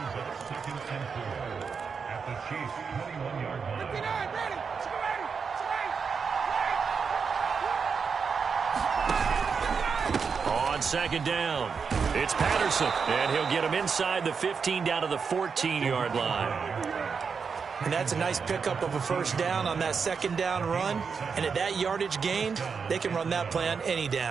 On second down, it's Patterson, and he'll get him inside the 15 down to the 14-yard line. And that's a nice pickup of a first down on that second down run. And at that yardage gained, they can run that play on any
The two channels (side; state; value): left; quieter; 5.7 dB